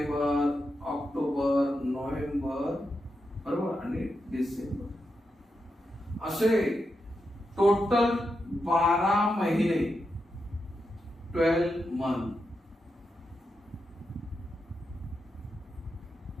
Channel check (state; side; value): normal; both; correlation 0.86